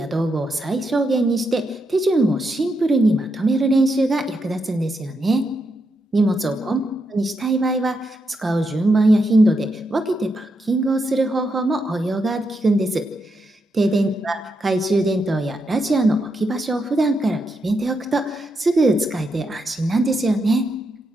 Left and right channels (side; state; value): both; normal; correlation 0.83